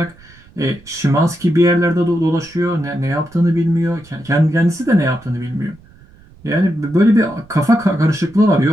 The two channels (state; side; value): noise; right; rumble, 25 dB below the sound